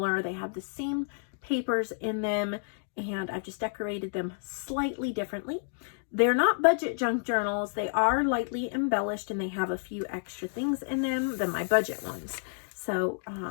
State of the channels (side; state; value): right; silent; digital silence